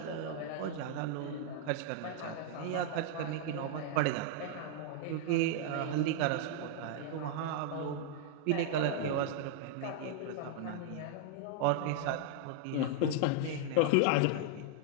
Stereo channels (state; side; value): different; both; correlation -0.01